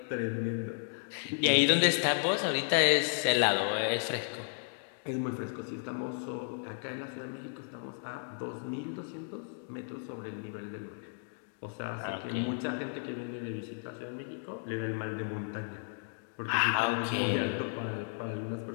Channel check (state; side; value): silent; right; digital silence